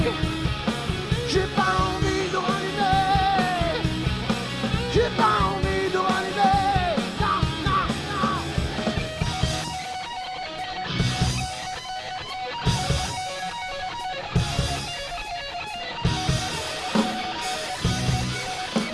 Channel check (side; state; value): both; identical; correlation 1.00